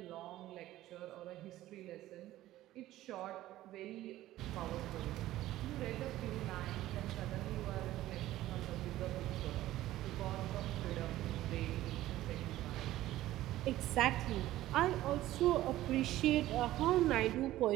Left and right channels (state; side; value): quieter; left; 15.1 dB